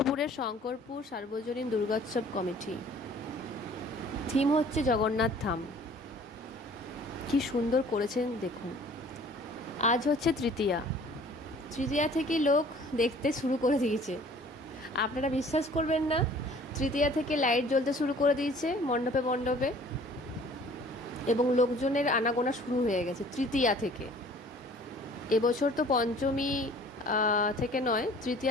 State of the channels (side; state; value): both; normal; correlation 0.51